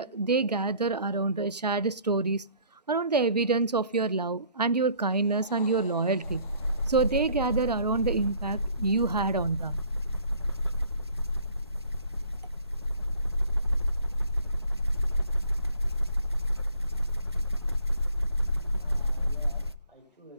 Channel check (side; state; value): both; inverted; correlation -0.56